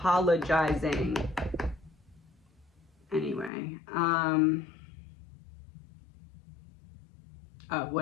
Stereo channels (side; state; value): right; drops out; at 3.5 s